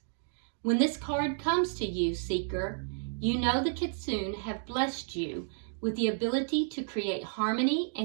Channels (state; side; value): silent; left; digital silence